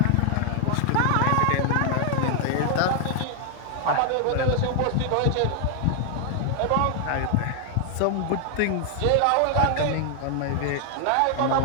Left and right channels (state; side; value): different; both; correlation 0.00